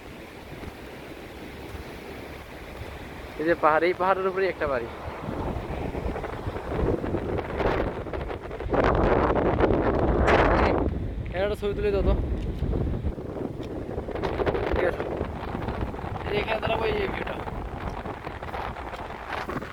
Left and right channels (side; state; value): both; identical; correlation 1.00